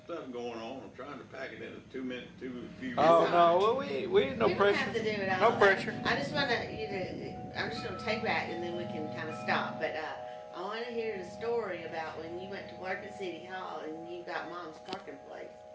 stuff going on. I'm trying to pack it into 2 minutes, few minutes. Oh no, well, we no You don't pressure. have to do it all. No pressure. I just want you to, I'm just going to take that and then we can kind of stop. But I want to hear the story about when you went to work at City Hall and you got Mom's parking place.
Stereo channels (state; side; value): identical; both; correlation 1.00